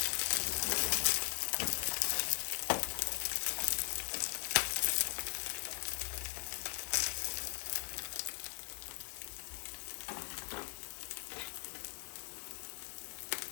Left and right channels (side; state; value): right; silent; 51 dB below the other